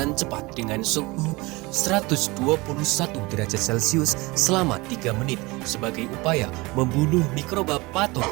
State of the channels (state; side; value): quieter; left; 23.3 dB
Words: cepat dengan suhu 121 derajat Celcius selama 3 menit sebagai upaya membunuh mikroba